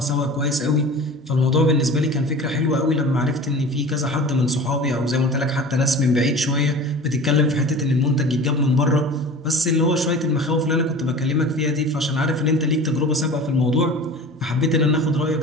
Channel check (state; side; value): normal; both; correlation 0.37